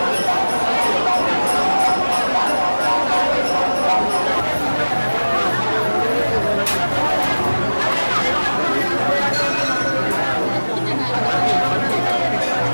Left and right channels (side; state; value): both; inverted; correlation -1.00